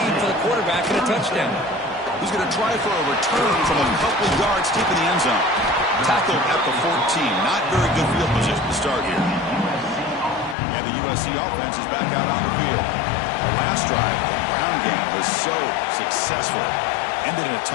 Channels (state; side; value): drops out; right; at 10.6 s